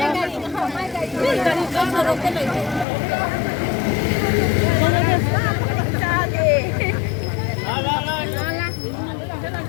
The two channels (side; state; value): right; drops out; at 2.9 s